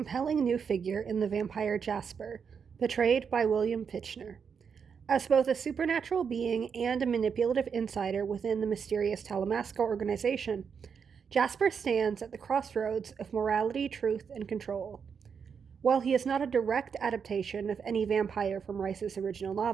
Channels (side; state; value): left; quieter; 6.5 dB